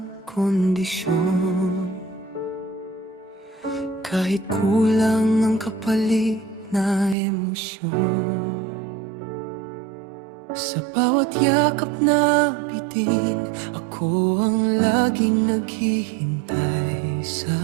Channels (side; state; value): left; drops out; at 7.2 s